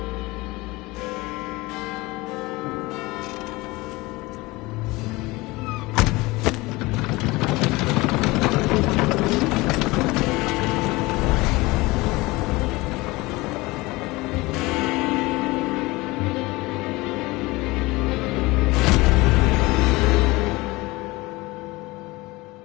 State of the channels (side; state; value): right; quieter; 21.9 dB